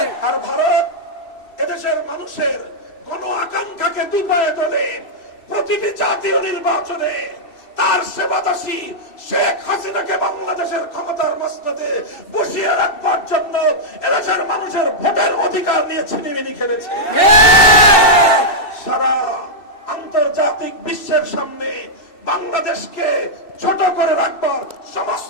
আর ভারত এদেশের মানুষের গণ আকাঙ্ক্ষাকে দুপায়ে তোলে। প্রতিটি জাতীয় নির্বাচনে তার সেবাদাসী শেখ হাসিনাকে বাংলাদেশের ক্ষমতার মসনদে বসিয়ে রাখবার জন্য এদেশের মানুষের ভোটের অধিকার নিয়ে ছিনিমিনি খেলেছে। সারা আন্তর্জাতিক বিশ্বের সামনে বাংলাদেশকে ছোট করে রাখবার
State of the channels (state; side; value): late; right; 2.7 ms